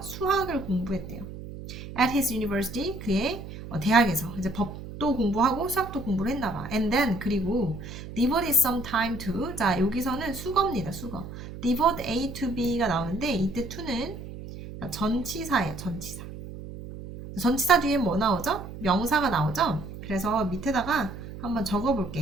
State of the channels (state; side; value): noise; right; hum, 11 dB below the sound